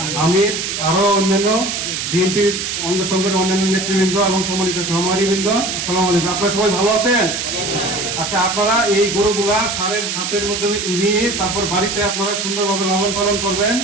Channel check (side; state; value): right; noise; hiss, 3 dB below the sound